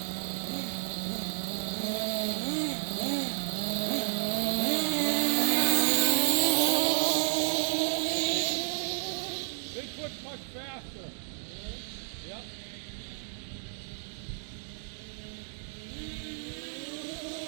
Bigfoot's much faster. Yep.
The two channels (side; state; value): left; silent; 57 dB below the other